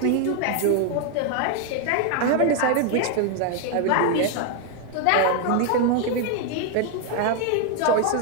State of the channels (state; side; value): different; both; correlation 0.00